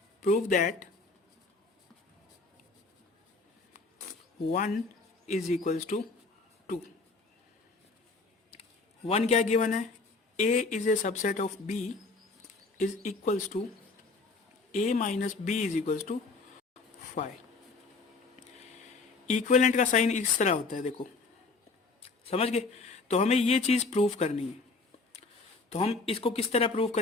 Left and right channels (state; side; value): quieter; right; 3.9 dB